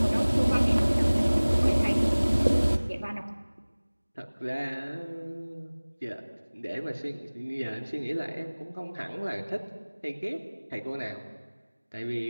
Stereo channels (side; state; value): both; inverted; correlation -1.00